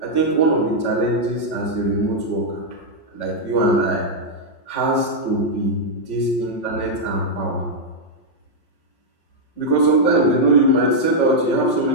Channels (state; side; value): late; right; 5.5 ms